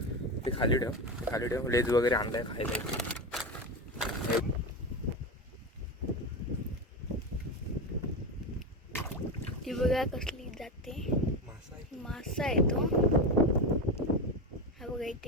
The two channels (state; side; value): normal; both; correlation 0.19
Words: ते खाली ठेव लेज वगैरे आणलाय खायला. ती बघा कसली जाते. मासा आहे तो. हा बघा इथे